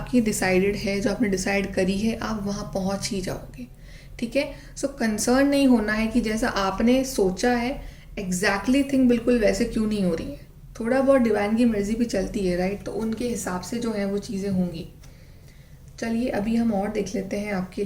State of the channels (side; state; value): both; identical; correlation 1.00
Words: डिसाइडेड है, जो आपने डिसाइड करी है, आप वहाँ पहुँच ही जाओगे, ठीक है। सो कंसर्न नहीं होना है कि जैसा आपने सोचा है एग्जैक्टली थिंग बिल्कुल वैसे क्यों नहीं हो रही है। थोड़ा बहुत डिवाइन की मर्जी भी चलती है, राइट। तो उनके हिसाब से जो है वो चीज़ें होंगी। चलिए अभी हम और देख लेते हैं आपके